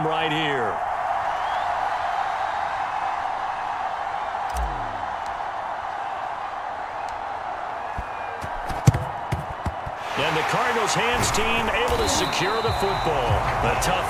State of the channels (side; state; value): both; identical; correlation 1.00